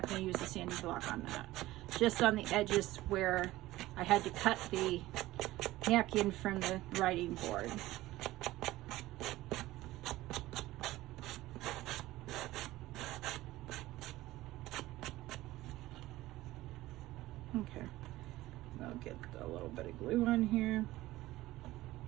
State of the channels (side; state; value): left; quieter; 17.0 dB